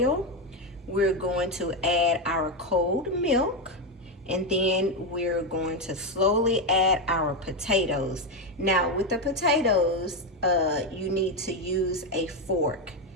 we're going to add our cold milk, and then we're going to slowly add our potatoes. Now with the potatoes, you need to use a fork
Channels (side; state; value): both; normal; correlation 0.08